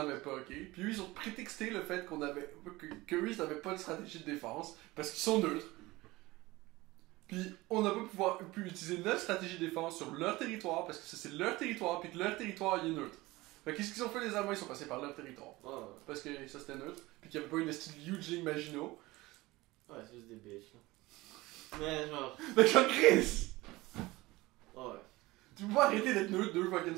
pas, ok? Puis eux ils ont prétexté le fait qu'on avait. Que eux ils n'avaient pas de stratégie de défense parce qu'ils sont neutres. Puis on n'a pas pu utiliser notre stratégie de défense sur leur territoire parce que ça c'est leur territoire puis que leur territoire il est neutre. Fait qu'est-ce qu'ils ont fait les Allemands? Ils sont passés par leur territoire. Ouais, ouais. Parce que ça c'était neutre. Puis qu'il n'y avait pas une style huge ligne Maginot. Ouais, c'est juste des bitches là. Mais genre. Fait que genre Chris! Ouais. Tu peux pas arrêter d'être neutre 2 fucking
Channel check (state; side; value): quieter; left; 20.2 dB